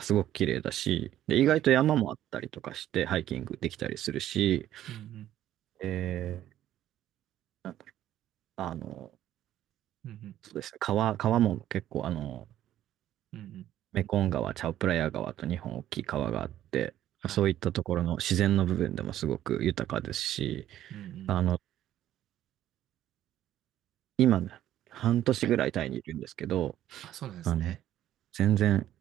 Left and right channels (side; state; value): left; quieter; 12.4 dB